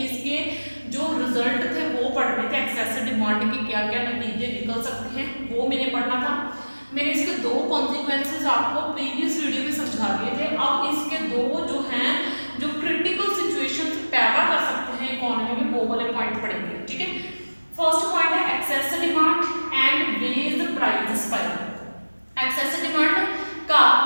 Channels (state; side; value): inverted; both; correlation -1.00